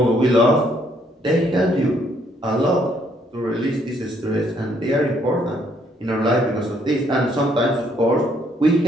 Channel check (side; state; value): both; normal; correlation 0.68